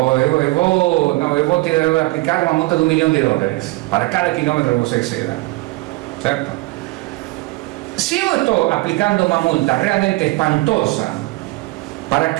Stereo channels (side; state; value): left; quieter; 22.1 dB